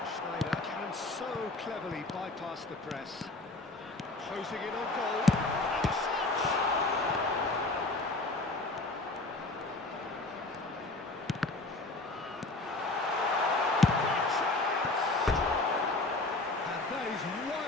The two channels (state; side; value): quieter; right; 3.0 dB